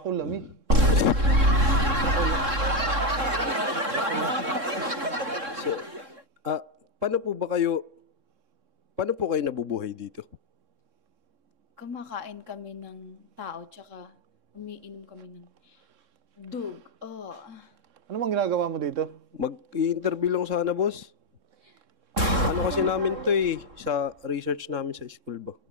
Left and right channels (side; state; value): left; late; 3.7 ms